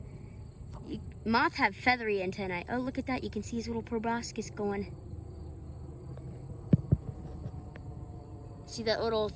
moths have feathery antennae. Oh, look at that. You can see his little proboscis going. See that little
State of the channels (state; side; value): identical; both; correlation 1.00